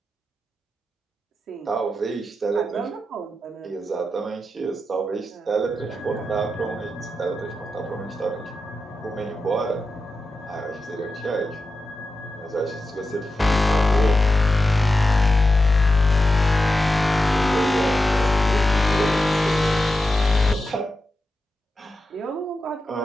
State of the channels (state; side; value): normal; both; correlation 0.90